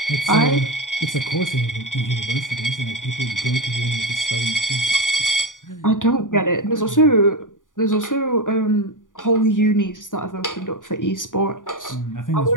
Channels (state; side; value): late; right; 0.88 ms